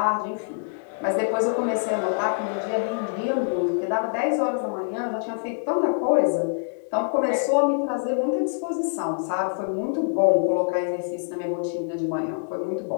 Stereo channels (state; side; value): silent; right; digital silence